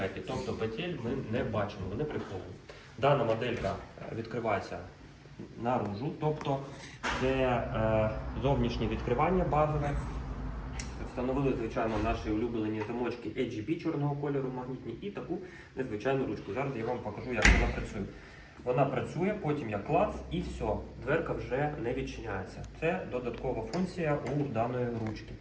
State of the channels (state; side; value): identical; both; correlation 1.00